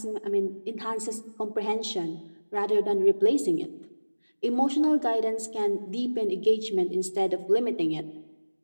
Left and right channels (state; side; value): inverted; both; correlation -1.00